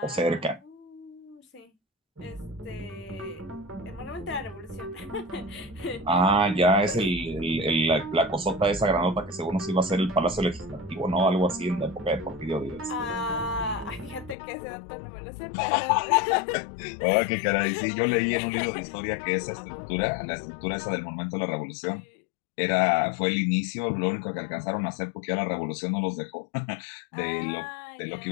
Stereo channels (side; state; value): right; drops out; at 14.4 s